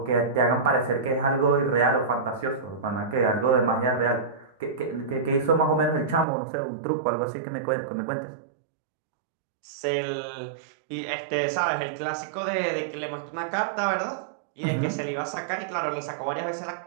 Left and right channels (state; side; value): drops out; left; at 6.2 s